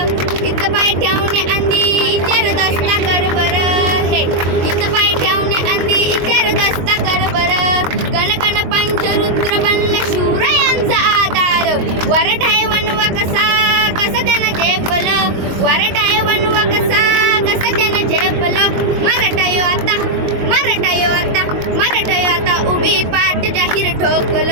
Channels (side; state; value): left; late; 22 ms